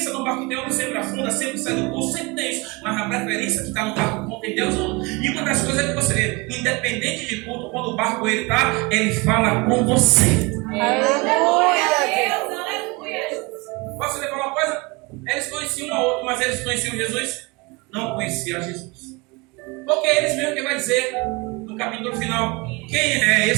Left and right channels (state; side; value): quieter; left; 26.3 dB